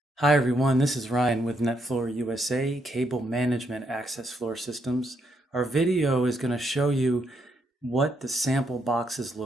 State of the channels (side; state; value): both; normal; correlation 0.77